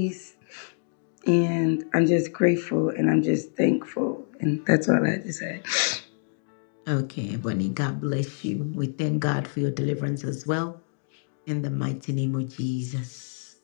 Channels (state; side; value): silent; right; digital silence